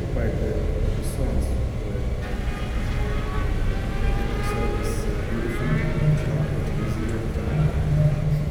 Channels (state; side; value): identical; both; correlation 1.00